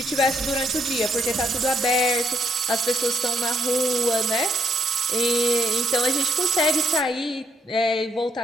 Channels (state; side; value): normal; both; correlation 0.73